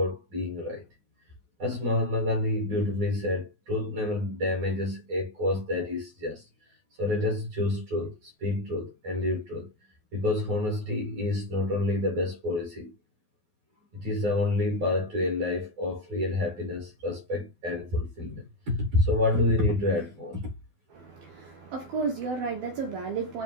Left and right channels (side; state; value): left; late; 12 ms